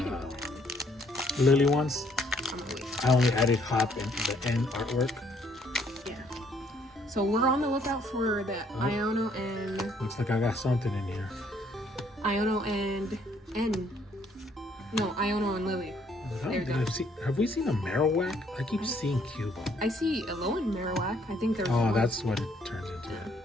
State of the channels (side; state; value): both; normal; correlation 0.65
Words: of that, Lily ones, I'm gonna wait. I only added hop and the end artwork. Yeah. So we're on the lookout for the Oh. Iono and Looks like I got something in here. Iono and Iono and Lily. There we go. Have we seen a Marowak? I keep seeing Cubo. I see Alolan Marowak. I think there's. Oh, one. that's what it turns into.